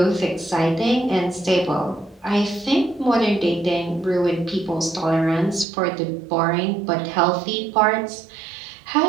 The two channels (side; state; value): left; drops out; at 5.7 s